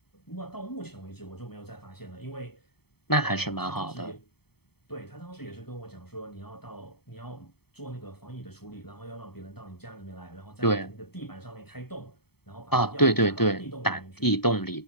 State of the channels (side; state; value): right; late; 0.97 ms